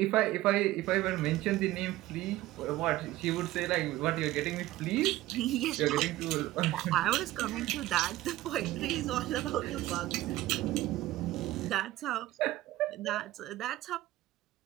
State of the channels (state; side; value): quieter; left; 16.3 dB